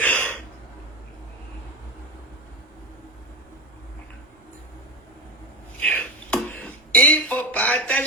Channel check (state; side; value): noise; right; rumble, 30 dB below the sound